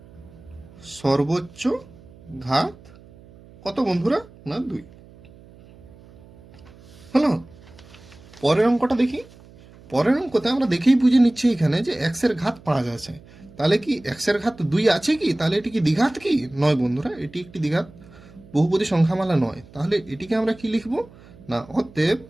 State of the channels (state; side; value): noise; right; hum, 23 dB below the sound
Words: সর্বোচ্চ ঘাত কত বন্ধুরা? না 2। হলো। পরের অঙ্কটা দেখি। পরের অঙ্কতে আমরা দেখেই বুঝে নিচ্ছি এখানে যে এক্সের ঘাত 5 আছে। তাহলে কি এক্সের ঘাত 2 আছে কি? তাহলে এটি কি দ্বিঘাত কি? নয় বন্ধুরা, এটি একটি দ্বিঘাত বহুপদী সংখ্যামালা নয়। তাহলে এটিকে আমরা কি লিখব না, অতএব